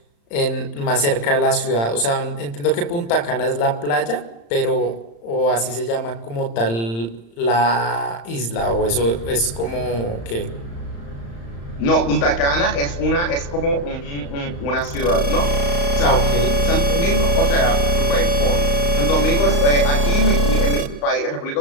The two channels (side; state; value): right; late; 35 ms